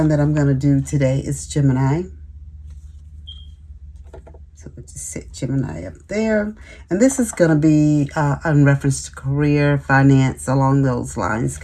that I'm going to do today is Gemini. So we'll just set Gemini up there. And this is going to be in reference to career, finance, along those lines,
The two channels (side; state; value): both; identical; correlation 1.00